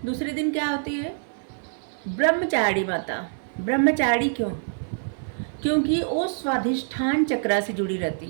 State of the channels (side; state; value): left; silent; digital silence